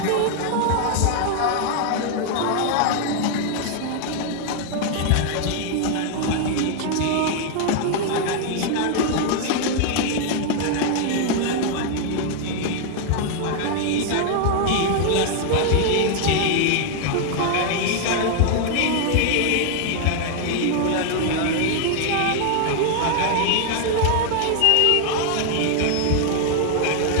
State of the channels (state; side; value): different; both; correlation 0.00